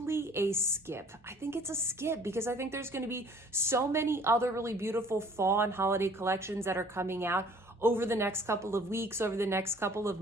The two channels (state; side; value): normal; both; correlation 0.53